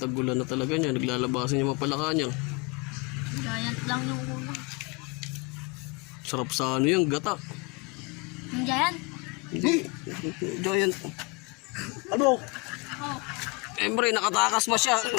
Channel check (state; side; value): quieter; right; 27.7 dB